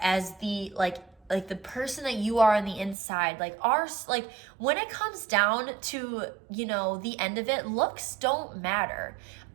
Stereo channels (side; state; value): left; drops out; at 3.0 s